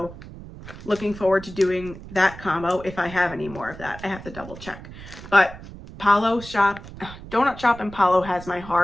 looking forward to doing that combo if I have any more of that. I have to double check. But Donut Shop and Palo has my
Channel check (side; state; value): right; noise; rumble, 15 dB below the sound